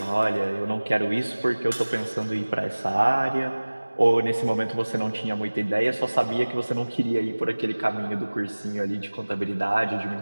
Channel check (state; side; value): inverted; both; correlation -1.00